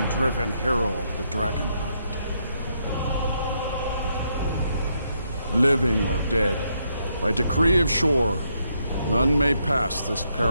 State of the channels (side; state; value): both; inverted; correlation -0.77